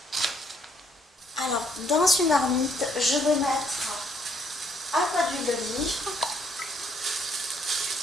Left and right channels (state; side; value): normal; both; correlation 0.69